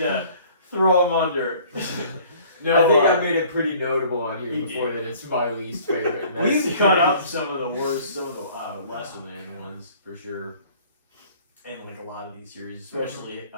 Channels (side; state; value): both; inverted; correlation -0.53